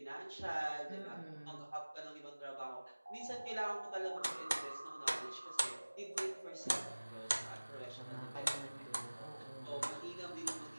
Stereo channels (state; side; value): inverted; both; correlation -1.00